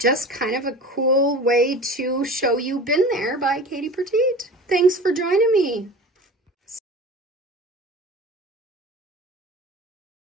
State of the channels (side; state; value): both; normal; correlation 0.36